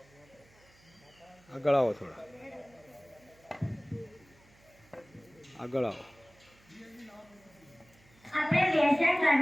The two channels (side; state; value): right; noise; hum, 29 dB below the sound